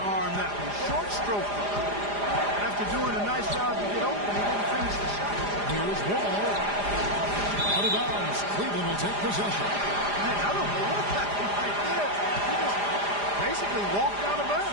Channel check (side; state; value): left; late; 4.9 ms